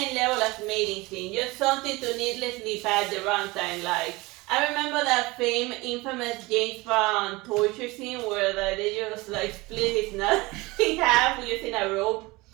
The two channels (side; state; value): left; quieter; 22.6 dB